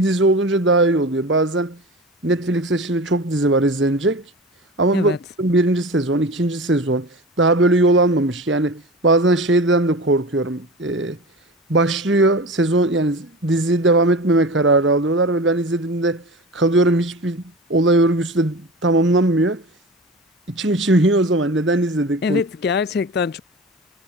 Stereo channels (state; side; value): normal; both; correlation 0.31